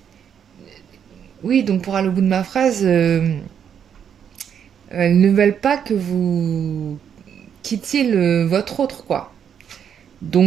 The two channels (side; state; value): left; quieter; 8.3 dB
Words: oui, donc pour aller au bout de ma phrase, elles ne veulent pas que vous quittiez votre autre, quoi.